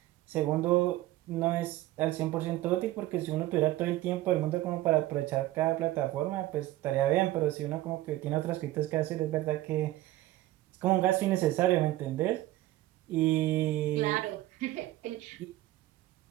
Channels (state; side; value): quieter; left; 16.1 dB